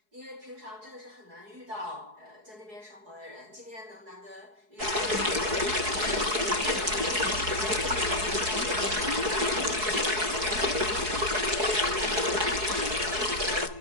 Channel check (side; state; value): left; late; 4.7 ms